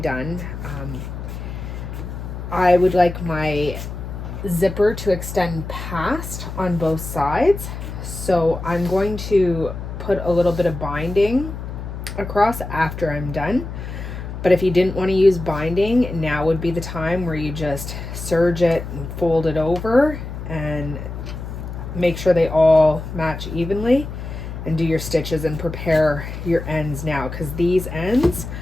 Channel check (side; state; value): left; noise; hum, 8 dB below the sound